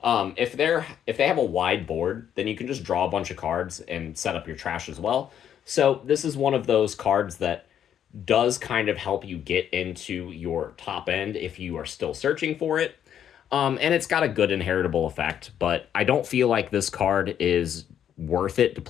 If they have a wide board, then you can just draw a bunch of cards and set up your trash as well. So this is one of those cards that does kind of help you get into your top end if you are still searching for it. And it's got a good inheritable effect, but I don't feel like this card is worth it to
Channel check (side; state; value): right; quieter; 9.6 dB